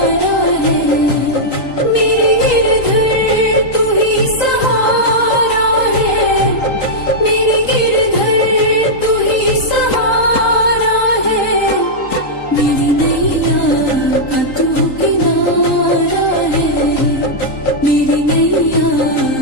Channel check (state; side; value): late; right; 3.8 ms